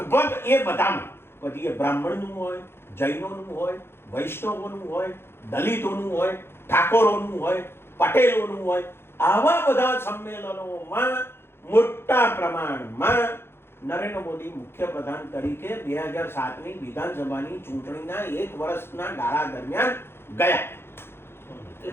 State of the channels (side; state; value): right; late; 0.11 ms